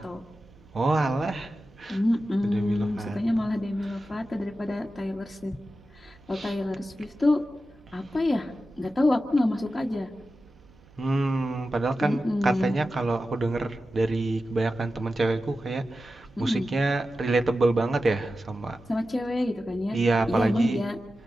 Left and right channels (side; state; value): right; noise; hum, 28 dB below the sound